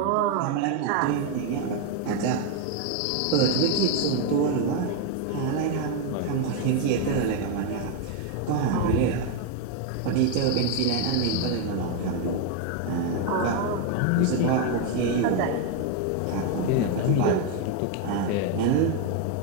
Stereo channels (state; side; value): different; both; correlation 0.01